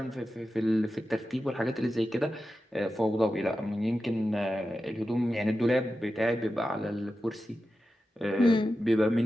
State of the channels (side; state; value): both; normal; correlation 0.92